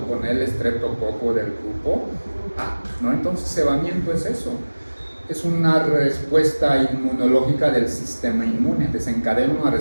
con el estreptococo del grupo A, ¿no? Entonces, cebamiento es eso. Es una respuesta inmunológica del sistema inmune, desencadena una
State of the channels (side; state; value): both; inverted; correlation -1.00